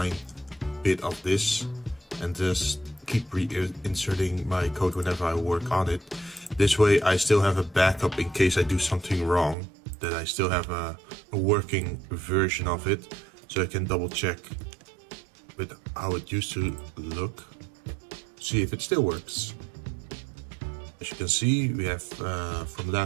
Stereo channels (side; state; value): left; drops out; at 9.6 s